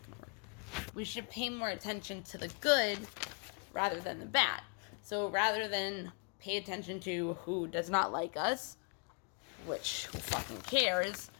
going to work. We should pay more attention to the good rather than the bad. So rather than pay attention to who does not like us, which who fucking cares,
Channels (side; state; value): right; quieter; 38.6 dB